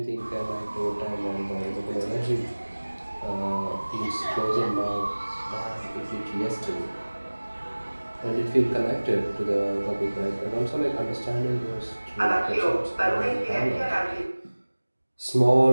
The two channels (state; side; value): inverted; both; correlation -1.00